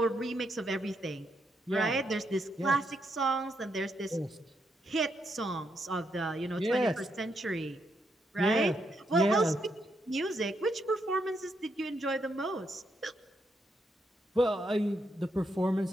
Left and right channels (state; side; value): normal; both; correlation 0.79